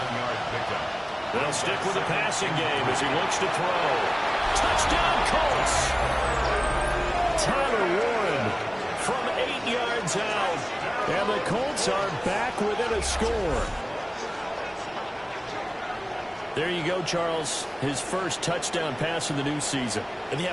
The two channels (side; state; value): both; identical; correlation 1.00